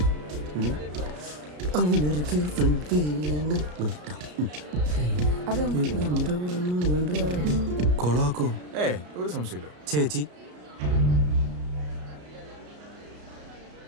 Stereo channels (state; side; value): late; left; 33 ms